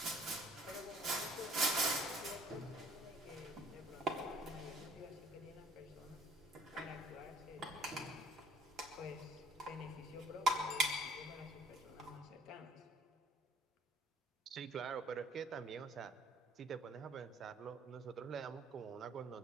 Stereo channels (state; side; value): normal; both; correlation 0.57